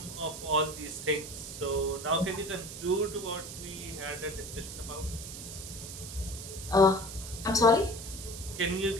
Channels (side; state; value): right; noise; hiss, 10 dB below the sound